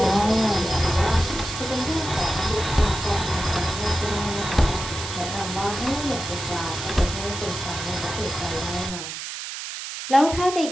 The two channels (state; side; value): noise; right; hiss, 7 dB below the sound